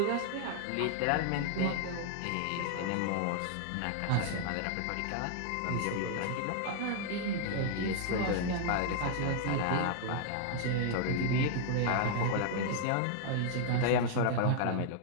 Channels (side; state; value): both; different; correlation 0.00